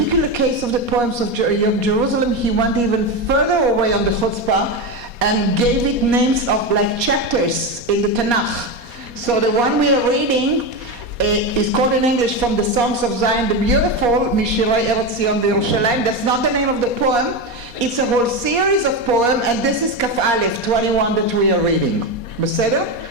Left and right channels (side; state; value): left; late; 4.2 ms